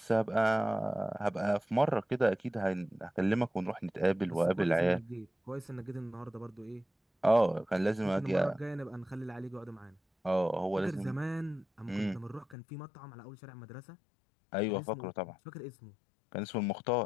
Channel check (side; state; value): right; drops out; at 12.6 s